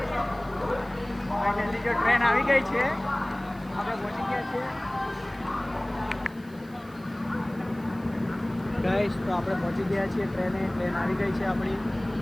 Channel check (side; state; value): right; noise; hiss, 26 dB below the sound